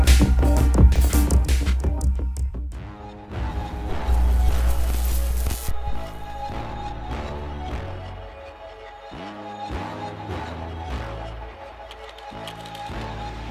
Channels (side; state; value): both; identical; correlation 1.00